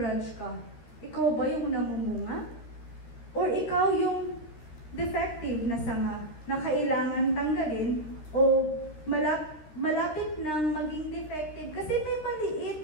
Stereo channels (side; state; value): right; late; 13 ms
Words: ka? Ikaw ba yung namumunga? Or ikaw yung defective na sanga na kailangan tanggalin o malapit nang maging defective kasi may maliit